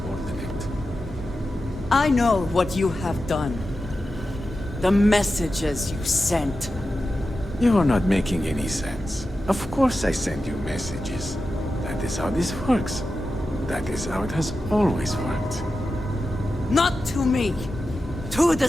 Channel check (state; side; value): normal; both; correlation 0.91